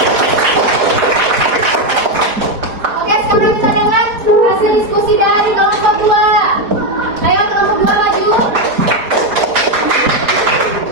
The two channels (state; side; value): late; left; 4.8 ms